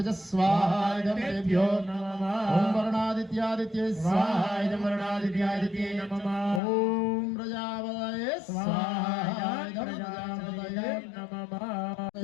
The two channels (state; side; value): drops out; right; at 6.6 s